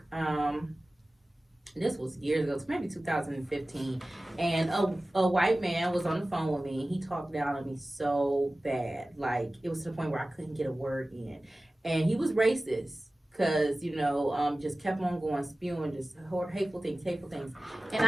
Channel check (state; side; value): normal; both; correlation 0.97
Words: This was years ago, maybe 2015, and a white man was on the phone with me. He talked down on me so bad, like it was to the point where I couldn't get a word in, and he was racist. Cause just kept on going, spewing just hateful things. And